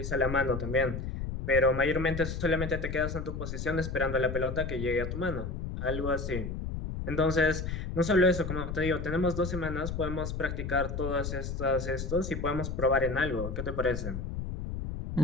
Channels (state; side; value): noise; left; rumble, 5 dB below the sound